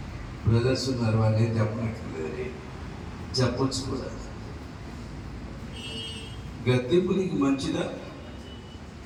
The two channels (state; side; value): identical; both; correlation 1.00